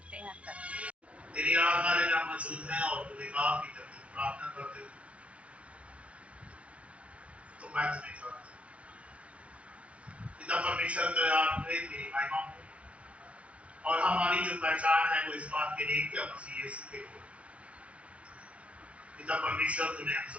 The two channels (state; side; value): late; left; 0.063 ms